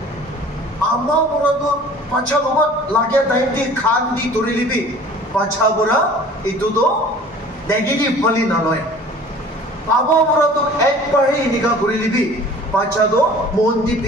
आमा बुरा तो पांचा लोग लागे टाइम दी खान दी तोरी लिबी पांचा बुरा इतू तो नेगेटिव पली नालोई बाबा बुरा तो एक बार ही निका गुरी लिबी पांचा तो मोन दी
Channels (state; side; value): normal; both; correlation 0.47